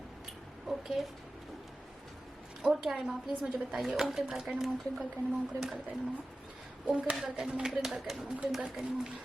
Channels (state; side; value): normal; both; correlation 0.95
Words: ओके, और क्या है माँ प्लीज मुझे बताइए। ओम क्रीम कल्कय नमः, ओम क्रीम कल्कय नमः, ओम क्रीम कल्कय नमः, ओम क्रीम कल्कय नमः, ओम क्रीम कल्कय नमः, ओम क्रीम कल्कय नमः,